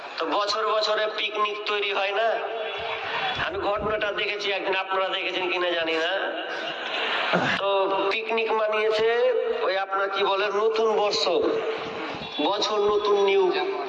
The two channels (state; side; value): identical; both; correlation 1.00